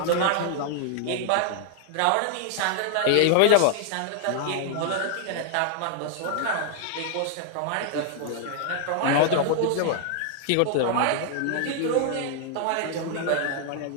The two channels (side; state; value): both; different; correlation 0.00